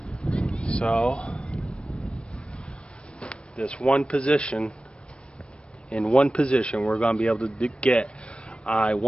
So, this one position, in one position, we're going to be able to get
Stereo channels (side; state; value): right; late; 0.058 ms